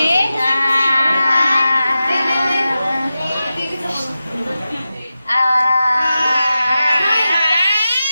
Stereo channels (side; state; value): both; inverted; correlation -0.93